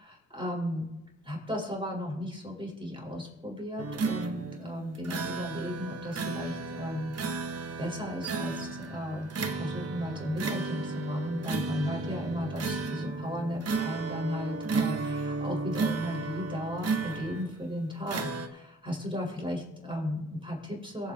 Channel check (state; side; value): normal; both; correlation 0.57